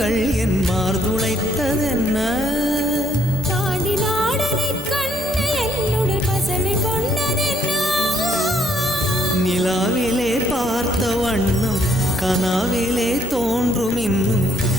என் மார்புளைத்ததென்ன தாண்டி நாடனை கண்ணு என்னுடைய பசலை கொண்டதென்ன நிலாவிலே பார்த்த வண்ணம் கனாவிலே தோன்றும் இன்னும்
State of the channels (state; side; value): normal; both; correlation 0.68